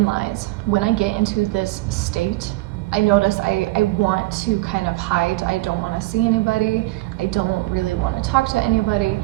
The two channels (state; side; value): quieter; left; 20.4 dB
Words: lies. When I get into this state, I notice I want to kind of hide. I don't want to see anybody. I don't really want to talk to anybody.